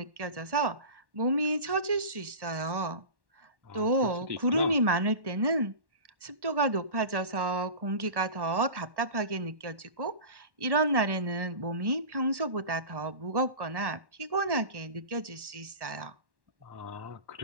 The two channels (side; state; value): left; late; 1.1 ms